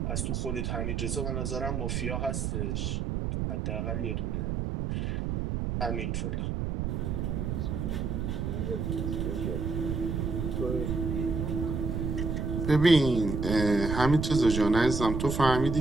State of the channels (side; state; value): right; noise; rumble, 1 dB below the sound